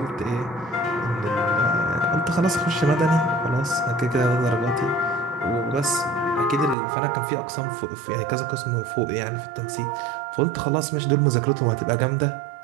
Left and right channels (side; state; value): left; drops out; at 6.8 s